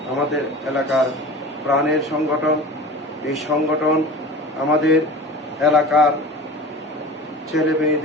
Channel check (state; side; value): normal; both; correlation 0.36